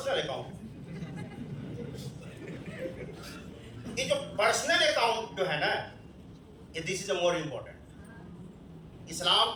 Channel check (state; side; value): identical; both; correlation 1.00